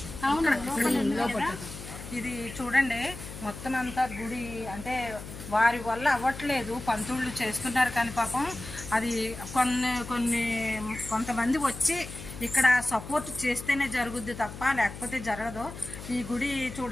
ఇది చూడండి. మొత్తం అంతా గుడి అంటే వారి వల్ల అవ్వట్లేదు, పంతుళ్ళు చేస్తున్నారు కానీ పాపం అది కొంతమంది వచ్చి ఇక్కడ సపోర్ట్ చేస్తేనే జరుగుద్ది తప్ప లేకపోతే జరగదు. ఈ గుడి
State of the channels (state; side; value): noise; left; hum, 12 dB below the sound